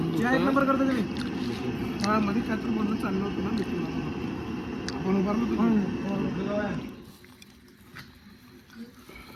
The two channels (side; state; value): both; identical; correlation 1.00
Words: या एक नंबर करता तुम्ही हा मध्ये काय तर बोलणं चाललं होतं ना मिथून आपण उभारलो